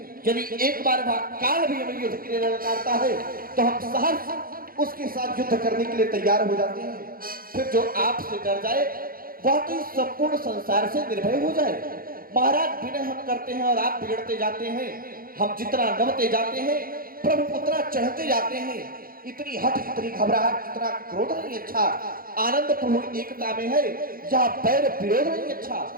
यदि एक बार काल भी हमें युद्ध के लिए ललकारता है तो हम सहर्ष उसके साथ युद्ध करने के लिए तैयार हो जाते हैं। फिर जो आपसे डर जाए वह तो इस संपूर्ण संसार से निर्भय हो जाए। महाराज, विनय हम करते हैं और आप बिगड़ते जाते हैं। हम जितना नमते जाते हैं प्रभु उतना चढ़ते जाते हैं। इतनी हट, इतनी घबराहट, इतना क्रोध नहीं अच्छा। आनंद प्रभु एकता में है, या बैर विरोध नहीं अच्छा।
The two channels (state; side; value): late; left; 0.42 ms